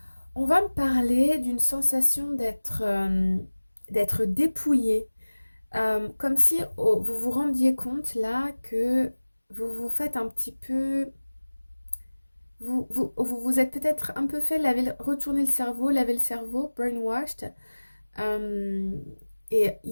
on va me parler d'une sensation d'être dépouillé. Comme si vous vous rendiez compte là que vous vous faites un petit peu... Vous êtes peut-être un peu fait retourner le cerveau, laver le cerveau, brainwashed. Euh, et il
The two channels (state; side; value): inverted; both; correlation -1.00